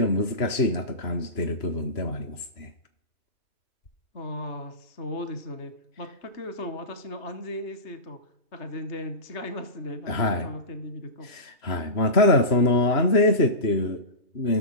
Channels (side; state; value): right; late; 3.0 ms